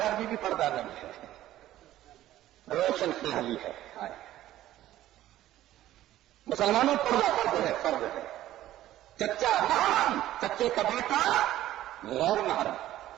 میں بھی پردہ نہیں ہے، روشن خیالی ہے. مسلمانوں پردہ فرض ہے، فرض ہے. چچا محرم، چچے کا بیٹا غیر محرم.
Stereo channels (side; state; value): left; quieter; 13.9 dB